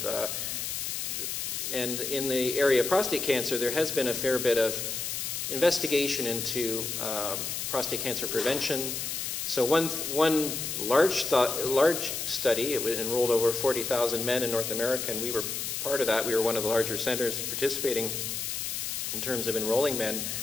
And in the area of prostate cancer, there has been a fair bit of investigation into prostate cancer prevention. So one large study, it enrolled over 40,000 men in North America, and we were part of that. We were one of the larger centers participating in terms of enrolling men,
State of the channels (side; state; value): left; noise; hiss, 3 dB below the sound